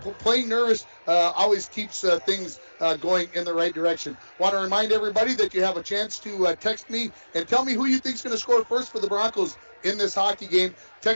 Playing nervous always keeps things going in the right direction. Want to remind everybody that you have a chance to text me and tell me who you think is going to score first for the Broncos in this hockey game.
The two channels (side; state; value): both; inverted; correlation -1.00